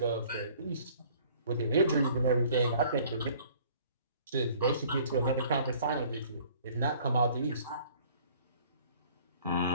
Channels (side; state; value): both; inverted; correlation -0.55